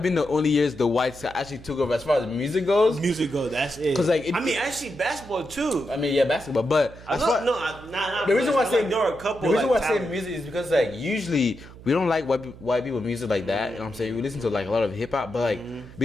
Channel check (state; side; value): noise; right; hum, 18 dB below the sound